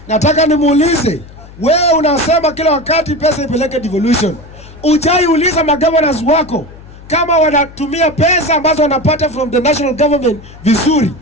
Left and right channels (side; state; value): left; noise; hum, 19 dB below the sound